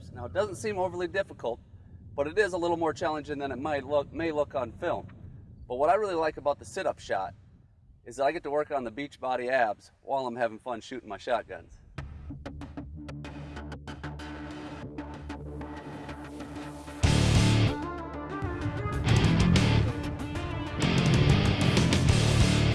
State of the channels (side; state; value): both; identical; correlation 1.00